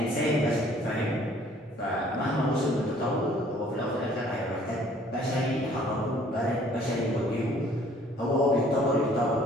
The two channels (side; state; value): both; normal; correlation 0.57